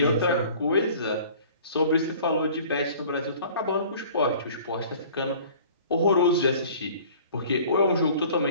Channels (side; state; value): both; inverted; correlation -0.48